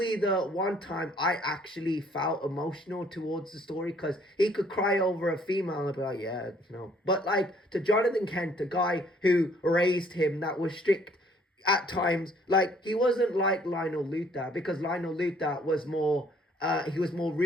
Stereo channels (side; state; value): both; normal; correlation 0.61